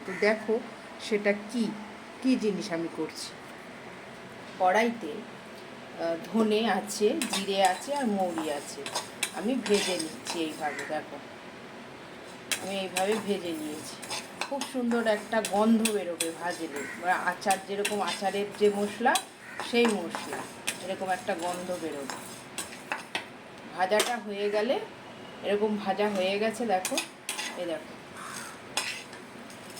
তো দেখো সেটা কি জিনিস আমি করছি। কড়াইতে ধনে আছে, জিরে আছে আর মৌরি আছে। আমি ভেজে নিচ্ছি এইভাবে। দেখো আমি এইভাবে ভেজে নিয়েছি। খুব সুন্দর একটা গন্ধ বেরোবে ভাজলে, বা আচার যেরকম আচারের যে মশলা, সেই মশলা এরকম একটা গন্ধ বেরোবে। ভাজাটা হয়ে গেলে, এরকম ভাজা হয়ে গেছে দেখো, এই দেখো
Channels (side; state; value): both; identical; correlation 1.00